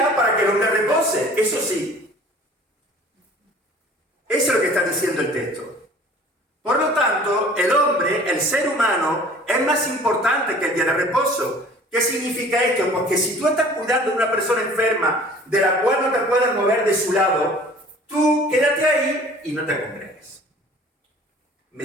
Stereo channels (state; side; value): normal; both; correlation 0.48